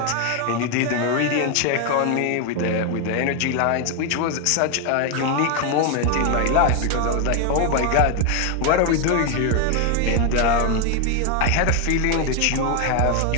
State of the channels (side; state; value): both; different; correlation 0.01